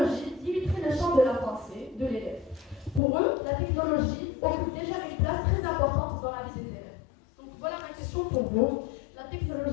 limiterait le champ de la pensée de l'élève. Pour eux, la technologie occupe déjà une place très importante dans la vie des élèves. Donc voilà ma question pour vous. La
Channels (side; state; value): right; drops out; at 3.0 s